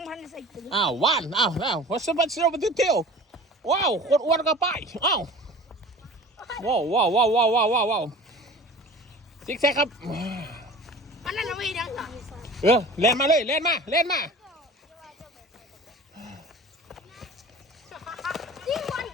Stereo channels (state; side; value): normal; both; correlation 0.41